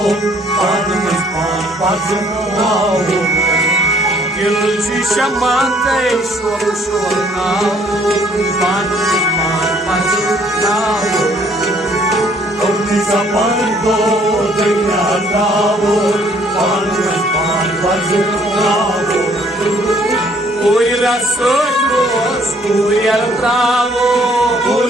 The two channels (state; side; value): normal; both; correlation 0.62